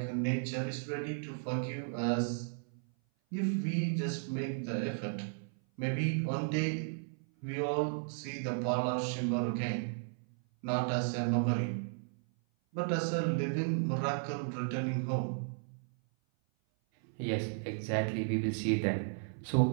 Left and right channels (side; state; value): left; silent; 55 dB below the other